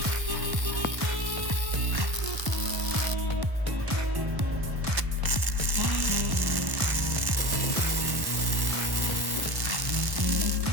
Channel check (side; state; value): left; late; 1.1 ms